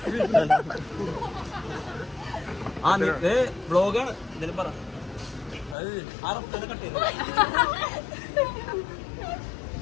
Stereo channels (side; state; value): right; drops out; at 5.8 s